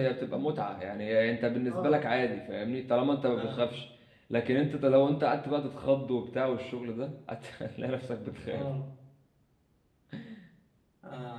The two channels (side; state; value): both; identical; correlation 1.00